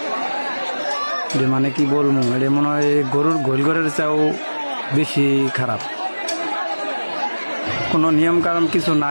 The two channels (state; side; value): inverted; both; correlation -1.00